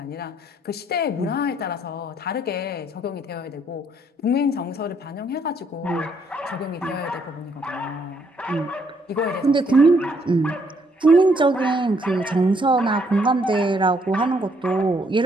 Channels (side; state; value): both; normal; correlation 0.70